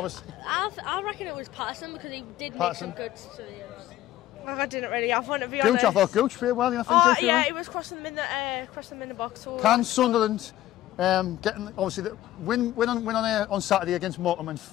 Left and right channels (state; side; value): quieter; right; 14.1 dB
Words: I reckon it was Patterson because he did make some good saves. I didn't really have one, to be honest. Gooch, I thought Gooch played well. He was crossing them in the box. So. Can Sunderland getting obviously win on Saturday against Morecambe, and